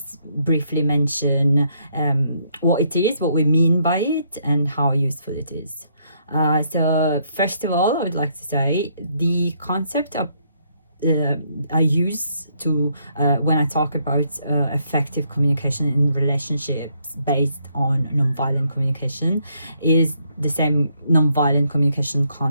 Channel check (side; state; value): both; inverted; correlation -0.72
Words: briefly mention what it is, what we mean by it, and how useful it is. So first of all, I would like to say the concept of I use to when I talk about effective communication in relationships based on nonviolent communication is the same nonviolent communication